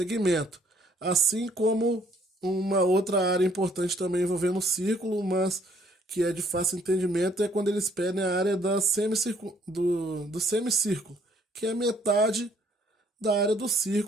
Assim como uma outra área importante também envolvendo o círculo, mas que é de fácil entendimento, é quando eles pedem a área do semicírculo, que é a metade da área do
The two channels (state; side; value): normal; both; correlation 0.64